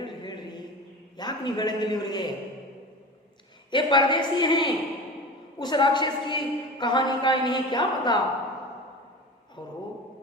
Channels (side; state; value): both; normal; correlation 0.32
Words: ಯಾಕೆ ನೀವು ಹೇಳಂಗಿಲ್ಲ ಇವರಿಗೆ. ये परदेसी हैं, उस राक्षस की कहानी का इन्हें क्या पता. ಅವರು